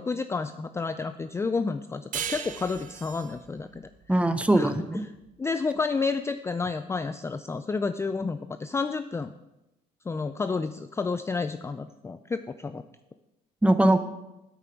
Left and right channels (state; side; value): normal; both; correlation 0.84